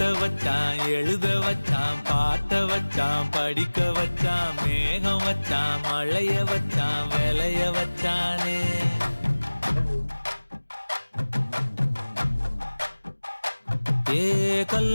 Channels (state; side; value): inverted; both; correlation -1.00